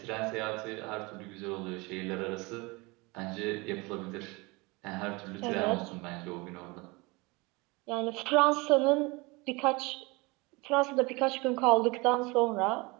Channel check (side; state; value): left; quieter; 25.4 dB